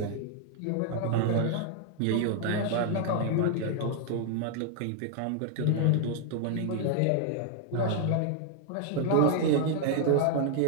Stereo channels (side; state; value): both; different; correlation 0.00